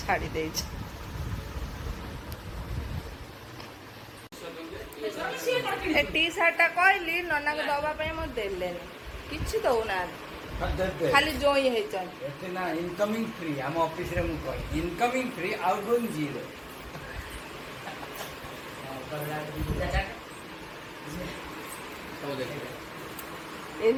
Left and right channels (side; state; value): both; identical; correlation 1.00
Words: ଛାଡ଼ି ଦେଇଛି। ଏ ଟି ସାର୍ଟଟା କହିଲି ନନାକୁ ଦବା ପାଇଁ ମୁଁ ଦେଲେନି, କିଛି ଦଉନାହାନ୍ତି, ଖାଲି ଜୋଇଁ ହେଇଛନ୍ତି। ଏତେ ନା ଇନକମିଂ ଫ୍ରି ଆମ ଅଫିସରେ ମୁଁ କହେ incoming free out going zero.